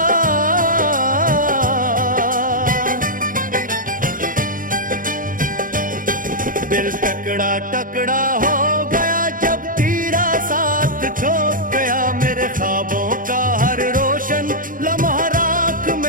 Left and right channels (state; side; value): late; left; 0.40 ms